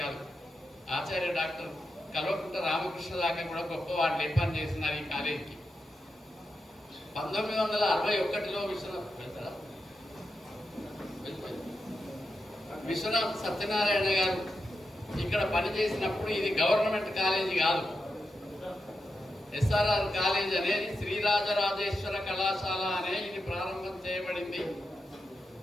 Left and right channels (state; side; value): normal; both; correlation 0.88